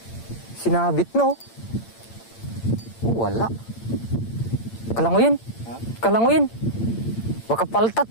Sinabit no? Wala. Kalanguyin. Baka paltat,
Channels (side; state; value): right; late; 8.8 ms